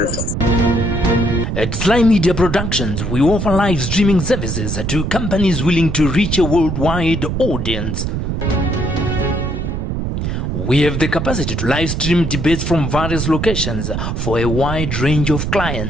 At Sly Media Productions, we offer live streaming services to companies willing to reach a worldwide audience. We have the capacity to live stream debates from various locations for a wide range of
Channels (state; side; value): noise; right; rumble, 2 dB below the sound